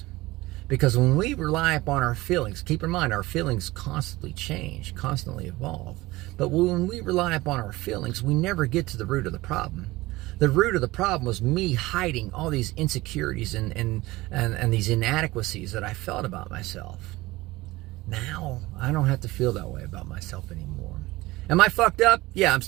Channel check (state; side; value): quieter; left; 19.6 dB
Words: Because when we rely upon our feelings, keep in mind, our feelings constantly change, constantly evolve. But when we rely upon our feelings, we never get to the root of the problem. The root of the problem was me hiding all these insecurities and these inadequacies that I felt about myself. Now, I don't have to feel that way about myself anymore. Am I fucked up? Yeah, I'm